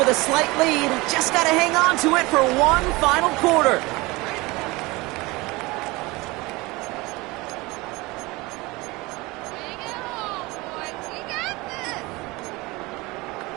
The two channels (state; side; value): quieter; left; 22.9 dB